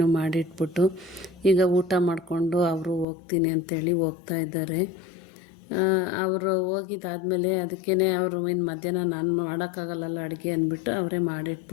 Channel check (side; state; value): right; drops out; at 3.1 s